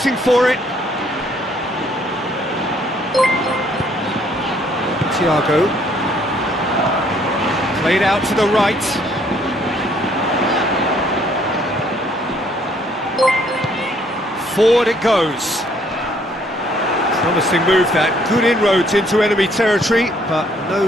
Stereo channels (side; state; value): both; normal; correlation 0.64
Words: for it. Thiago. Played out to the right. Forward it goes. Promising move that. Good inroads into enemy territory, but